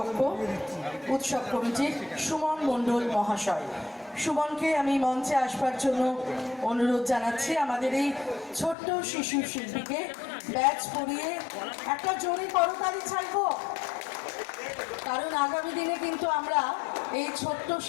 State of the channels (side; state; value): right; drops out; at 8.8 s